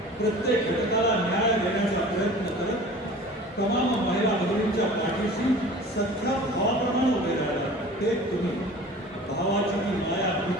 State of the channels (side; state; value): both; normal; correlation 0.42